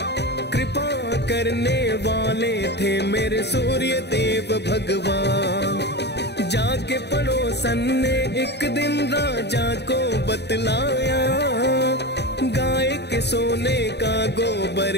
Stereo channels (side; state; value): right; late; 0.49 ms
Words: कृपा करने वाले थे मेरे सूर्य देव भगवान। जाके पड़ोसन ने एक दिन राजा को बतलाया, गाय के सोने का गोबर